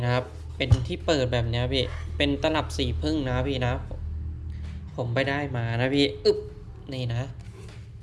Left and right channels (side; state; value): both; identical; correlation 1.00